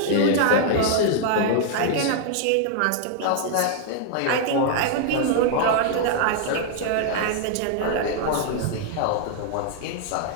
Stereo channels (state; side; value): different; both; correlation -0.01